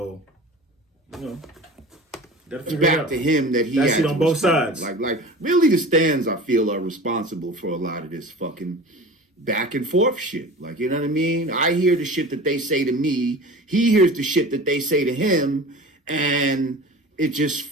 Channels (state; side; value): normal; both; correlation 0.37